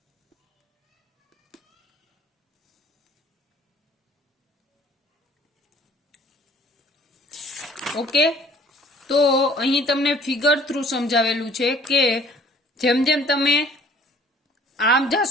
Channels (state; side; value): normal; both; correlation 0.54